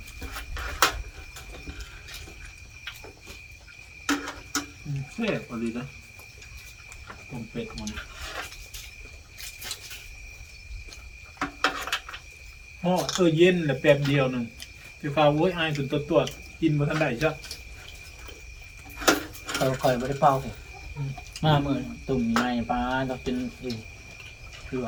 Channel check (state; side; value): identical; both; correlation 1.00